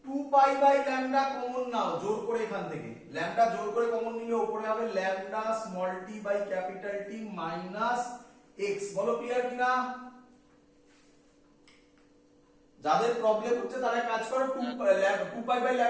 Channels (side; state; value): both; identical; correlation 1.00